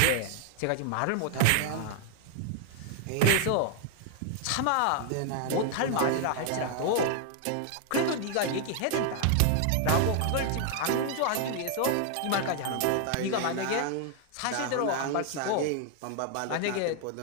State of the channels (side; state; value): both; different; correlation 0.00